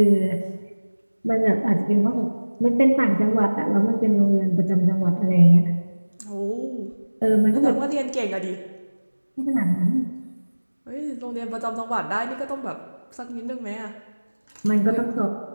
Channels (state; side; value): inverted; both; correlation -1.00